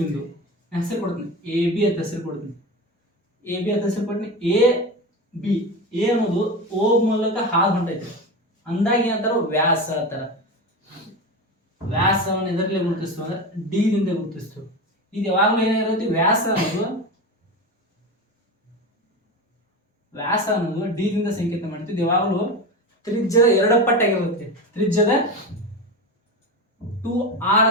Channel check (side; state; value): both; normal; correlation 0.23